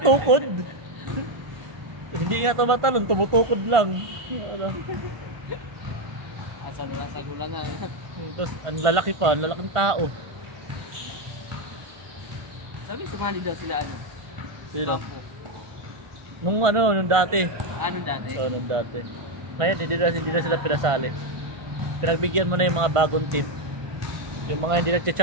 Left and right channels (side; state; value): left; late; 1.5 ms